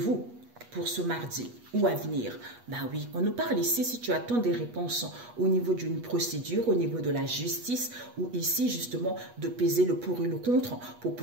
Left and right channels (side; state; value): left; late; 8.3 ms